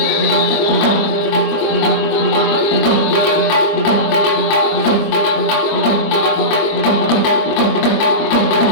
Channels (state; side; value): late; right; 25 ms